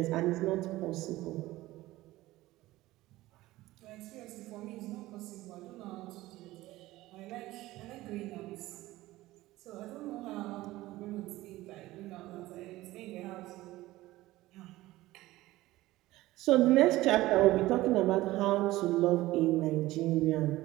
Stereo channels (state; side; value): quieter; left; 17.5 dB